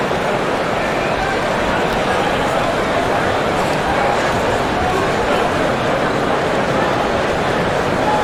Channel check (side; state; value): both; identical; correlation 1.00